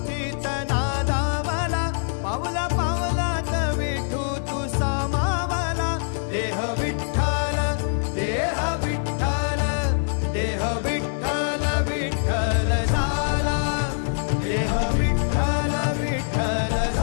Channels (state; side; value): silent; right; 63 dB below the other